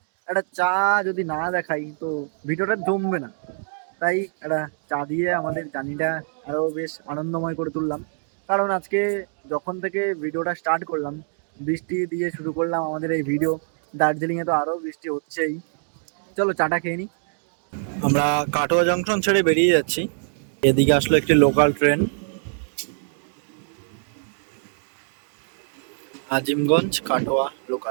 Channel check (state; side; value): silent; left; digital silence